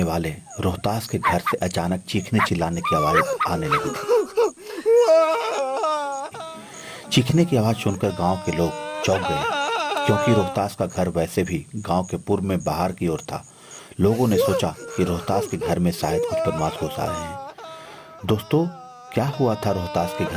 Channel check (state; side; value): identical; both; correlation 1.00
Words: वाले रोहतास के घर से अचानक चीखने चिल्लाने की आवाज आने लगी थी। चीखने की आवाज सुनकर गांव के लोग चौंक गए, क्योंकि रोहतास का घर वैसे भी गांव के पूर्व में बाहर की ओर था। लोगों ने सोचा कि रोहतास के घर में शायद कुछ बदमाश घुस आ रहे हैं। दोस्तों, क्या हुआ था रोहतास के